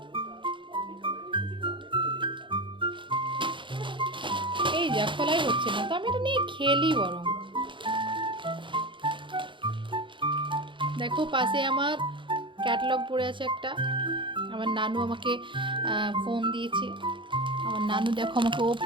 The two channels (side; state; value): left; late; 0.24 ms